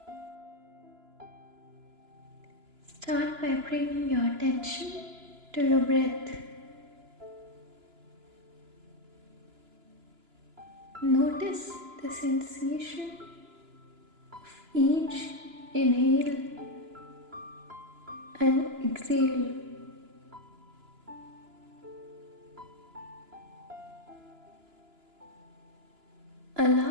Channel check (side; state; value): left; late; 2.9 ms